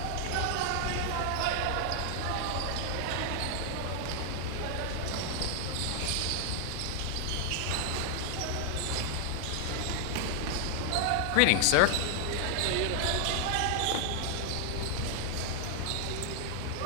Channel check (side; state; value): both; different; correlation 0.00